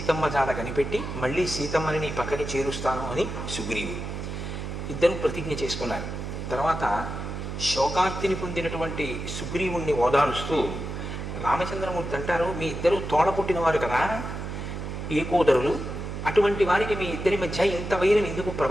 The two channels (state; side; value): noise; right; hum, 6 dB below the sound